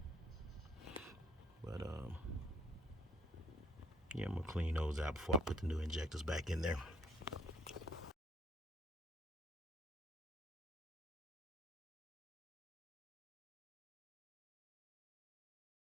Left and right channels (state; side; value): normal; both; correlation 0.63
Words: But yeah, I'm gonna clean those out before I put the new injectors back in there.